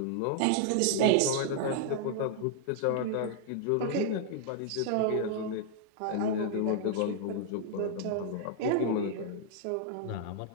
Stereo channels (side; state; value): both; different; correlation 0.00